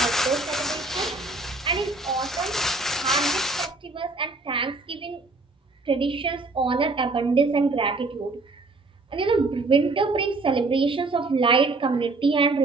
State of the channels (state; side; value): quieter; left; 3.3 dB